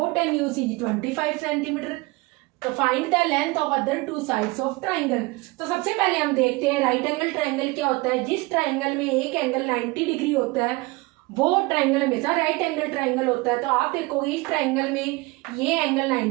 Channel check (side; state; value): left; quieter; 23.8 dB